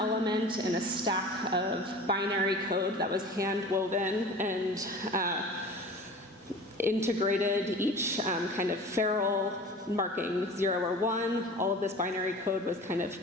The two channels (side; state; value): both; normal; correlation 0.39